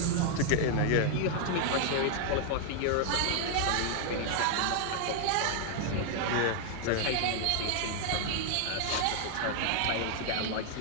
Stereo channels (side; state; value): both; different; correlation 0.00